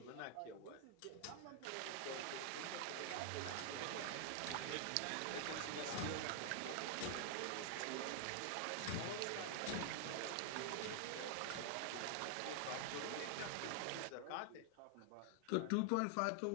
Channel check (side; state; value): both; different; correlation 0.00